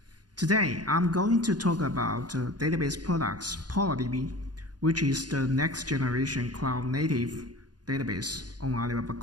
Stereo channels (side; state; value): left; late; 0.69 ms